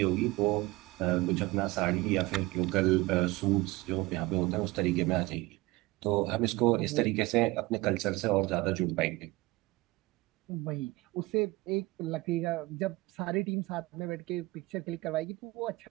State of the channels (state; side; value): quieter; left; 21.1 dB